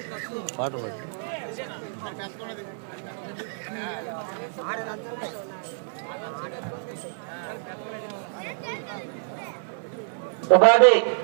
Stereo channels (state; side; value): silent; left; 58 dB below the other